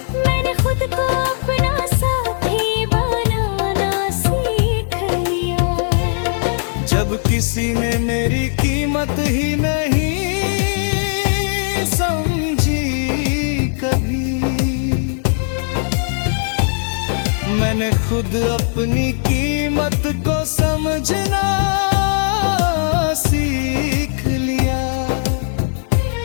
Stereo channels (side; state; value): right; silent; digital silence